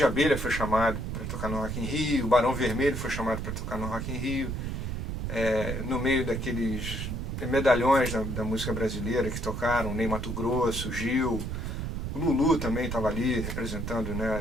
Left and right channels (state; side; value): noise; right; rumble, 4 dB below the sound